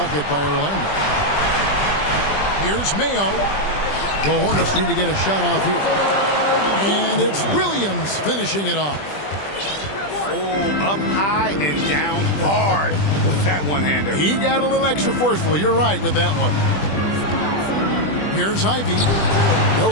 by Orlando. Here's Mayo. The Hornets need to get a shot off here. And it's Williams finishing it off. Oh, up high and down hard with that one-hander. He got a little extra forceful. You're right with that one. Here's Ivy. No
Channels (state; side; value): late; right; 20 ms